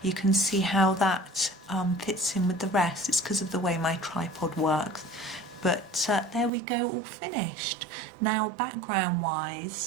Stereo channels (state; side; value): drops out; left; at 6.5 s